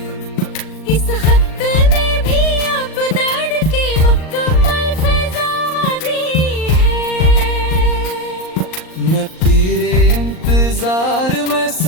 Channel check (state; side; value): late; right; 38 ms